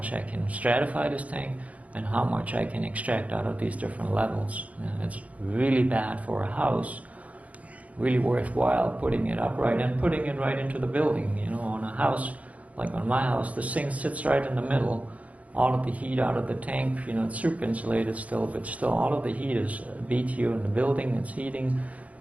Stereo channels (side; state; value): left; late; 0.068 ms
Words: I can stratify this tank and how much I can extract out of these different levels. And it's really bad for a house, really worthwhile putting it upright and putting it right into the building. On a house, like on my house, the sink sits right in the middle. All of the heat out of the tank, it's super insulated still, but still all of the heat is BTU in the building, it's heating,